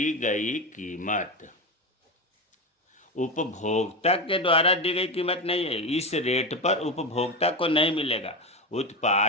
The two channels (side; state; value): both; normal; correlation 0.17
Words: गई कीमत। उपभोक्ता के द्वारा दी गई कीमत नहीं है, इस रेट पर उपभोक्ता को नहीं मिलेगा।